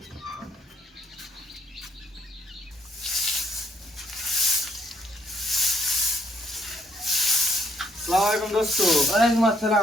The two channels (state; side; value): normal; both; correlation 0.71